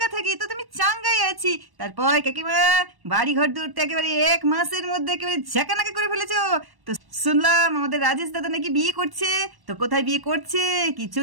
থাকি, তো তুমি চাঙ্গাই আছি। তারপর কাকিমা, বাড়ি ঘর দূরতে একেবারে 1 মাসের মধ্যে একেবারে ঝাঁকানাকা করে ফেলেছো। তো শুনলাম আমাদের রাজেশ দাদা নাকি বিয়ে করছে, তো কোথায় বিয়ে করছে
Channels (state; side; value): late; left; 1.1 ms